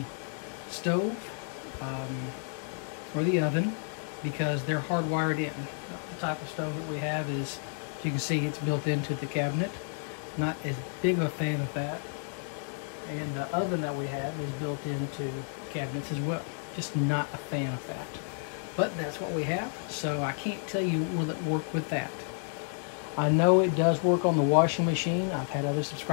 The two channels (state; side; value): silent; right; 57 dB below the other